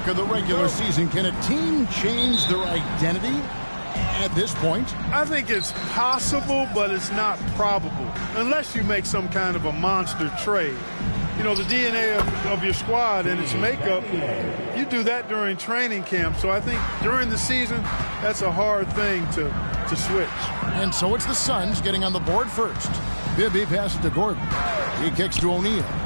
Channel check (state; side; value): inverted; both; correlation -1.00